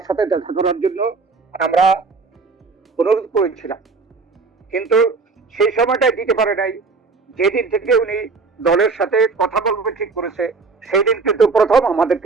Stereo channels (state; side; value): quieter; left; 4.2 dB